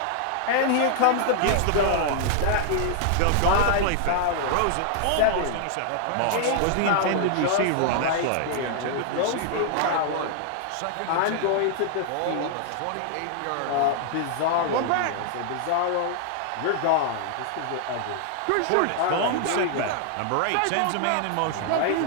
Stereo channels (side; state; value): both; different; correlation 0.00